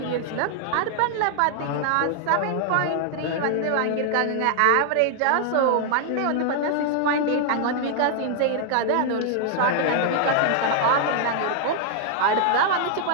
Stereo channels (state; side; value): different; both; correlation 0.00